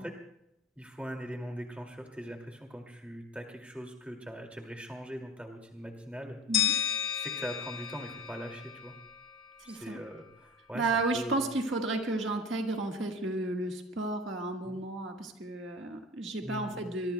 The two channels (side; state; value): both; normal; correlation 0.38